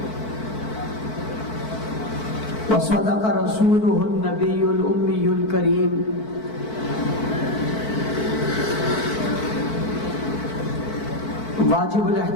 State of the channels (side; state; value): right; late; 4.5 ms